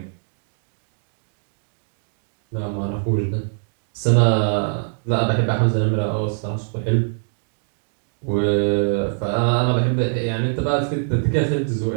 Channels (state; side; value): silent; left; digital silence